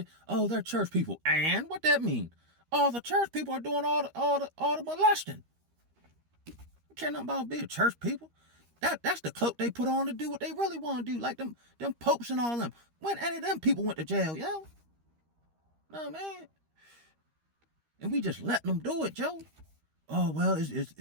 oh, they're church people. And what that mean? All the church people are doing all the molesting. I care nothing about being church people. That's the cloak they put on to do what they really want to do. Like them popes and all them. When any of them people went to jail, yo? No, man. And we just letting them do it, Joe. Oh well, it's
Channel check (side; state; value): left; late; 13 ms